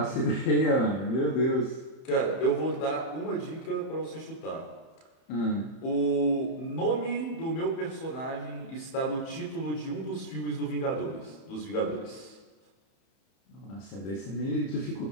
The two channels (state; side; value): late; right; 31 ms